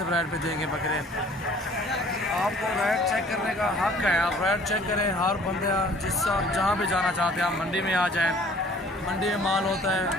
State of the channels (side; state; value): both; normal; correlation 0.53